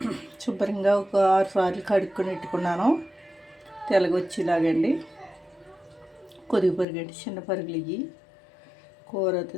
శుభ్రంగా ఒక 6 సార్లు కడుక్కొని పెట్టుకున్నాను. తెల్లగొచ్చేలాగండి. కొద్దిగా పరుగు అండి, చిన్న పరుగులు ఇవి. కూర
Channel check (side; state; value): right; drops out; at 6.9 s